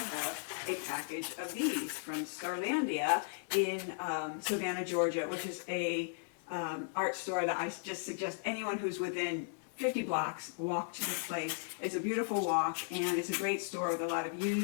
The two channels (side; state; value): right; silent; 54 dB below the other